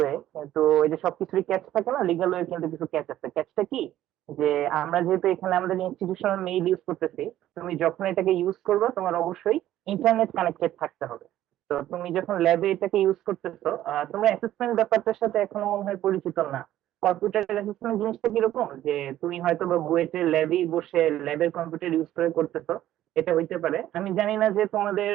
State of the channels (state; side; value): quieter; left; 13.1 dB